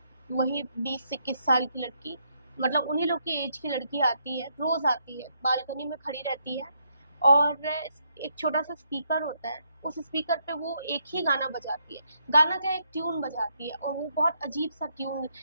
वही 20 से 21 साल की लड़की, मतलब उन्हीं लोग की एज की लड़की आती है, रोज आती है, बालकनी में खड़ी रहती है, और एक छोटा सा स्पीकर होता है, उस स्पीकर पे वो एक ही गाना बजाती है। गाना क्या, एक ट्यून बजाती है, और वो बहुत अजीब सा ट्यून,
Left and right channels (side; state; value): both; inverted; correlation -0.76